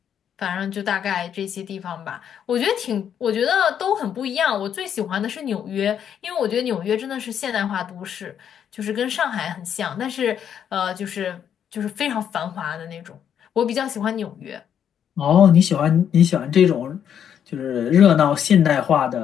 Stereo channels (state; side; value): quieter; right; 8.8 dB